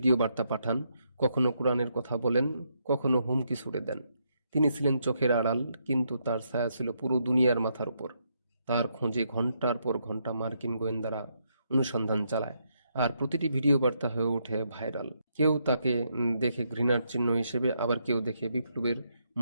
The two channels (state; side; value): inverted; both; correlation -0.77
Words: বার্তা পাঠান, কখনো কোরআনের কথা বলেন, কখনো হুমকি ছুড়ে দেন। তিনি ছিলেন চোখের আড়াল, কিন্তু তার ছায়া ছিল পুরো দুনিয়ার মাথার উপর। তার খোঁজে ঘন্টার পর ঘন্টা মার্কিন গোয়েন্দারা অনুসন্ধান চালায়, আর প্রতিটি ভিডিও বার্তা হয়ে ওঠে ভাইরাল। কেউ তাকে দেখে ঘৃণার চিহ্ন হিসেবে, আবার কেউ দেখে বিপ্লবের